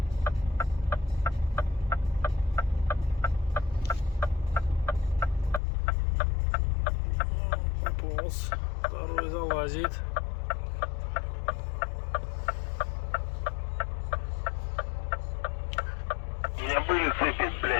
Пополз. Второй залазит. У меня были цепи,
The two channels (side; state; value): right; drops out; at 5.6 s